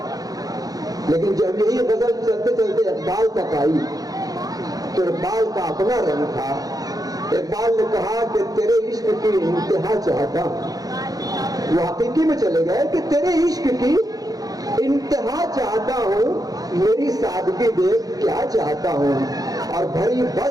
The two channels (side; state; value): left; late; 0.18 ms